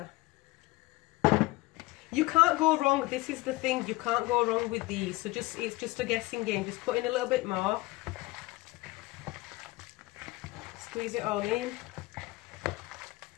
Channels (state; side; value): quieter; right; 20.8 dB